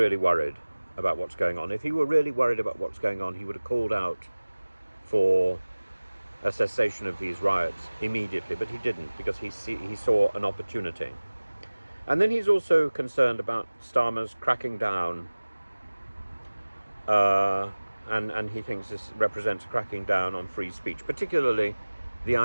worried about what's going on, if he were really worried about what's going on, he would have called out for a cessation of these riots immediately, but he didn't, because he saw an opportunity. And then he's also concerned about Starmer's cracking down, and he thinks this represents a cracking down on free speech, particularly the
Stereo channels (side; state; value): both; inverted; correlation -1.00